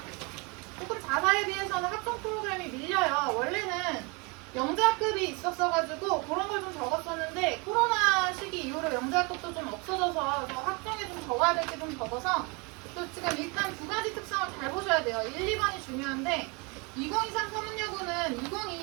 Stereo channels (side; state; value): left; quieter; 29.9 dB